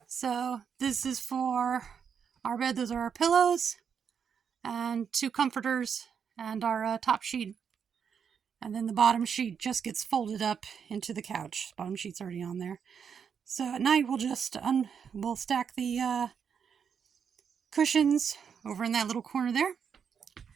So this is for our bed. Those are our pillows and 2 comforters and our top sheet. And then the bottom sheet just gets folded up into the couch. Bottom sheet's already on there. So at night we'll just we'll stack the cushions over in that little corner there.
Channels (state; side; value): quieter; left; 7.1 dB